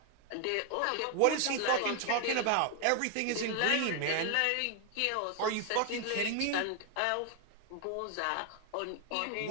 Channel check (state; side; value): different; both; correlation 0.01